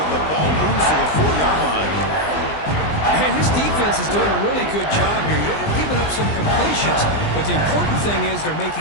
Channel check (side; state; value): right; late; 20 ms